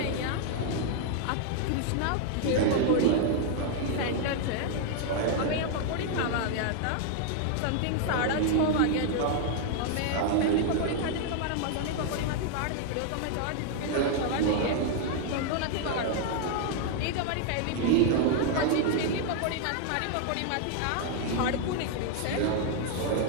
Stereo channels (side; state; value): both; different; correlation 0.00